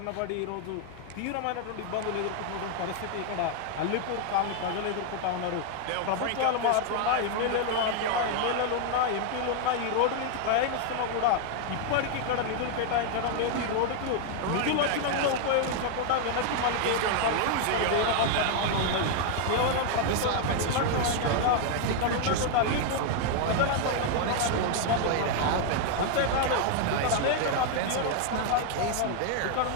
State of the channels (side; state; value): both; different; correlation 0.00